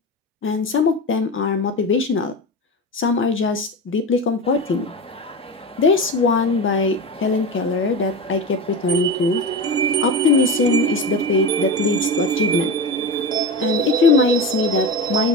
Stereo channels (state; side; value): normal; both; correlation 0.24